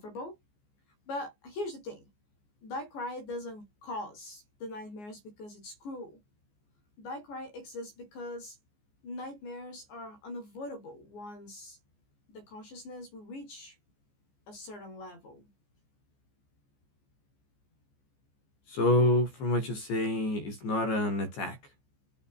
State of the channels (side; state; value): right; late; 14 ms